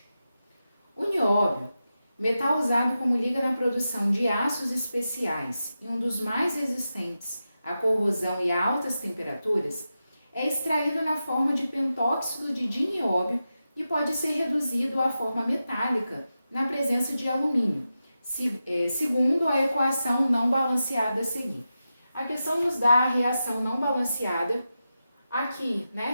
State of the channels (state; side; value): inverted; both; correlation -0.91